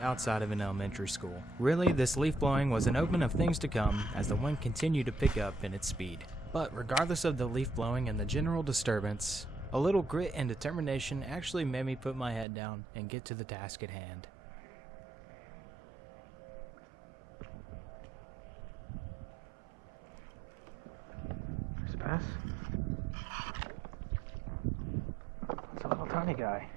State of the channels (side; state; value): left; drops out; at 12.5 s